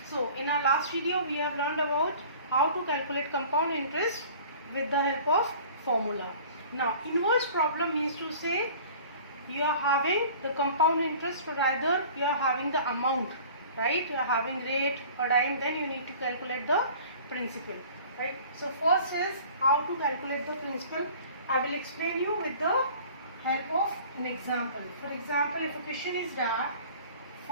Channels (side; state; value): both; inverted; correlation -0.46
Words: So in our last video we have learned about how to calculate compound interest with the help of formula. Now inverse problem means to say you are having the compound interest, or rather you are having the amount, right? You are having rate or time, then you need to calculate the principal, right? So first is how to calculate the principal. I will explain you with the help of an example. For example, if a question is that